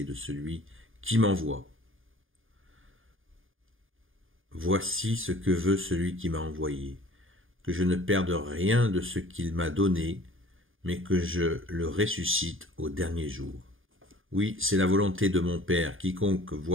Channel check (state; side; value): late; left; 0.59 ms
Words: de celui qui m'envoie. Voici ce que veut celui qui m'a envoyé, que je ne perde rien de ce qu'il m'a donné, mais que je le ressuscite au dernier jour. Oui, c'est la volonté de mon Père, quiconque